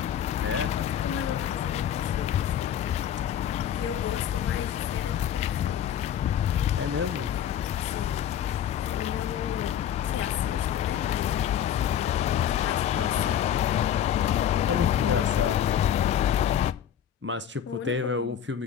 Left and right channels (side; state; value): right; quieter; 9.8 dB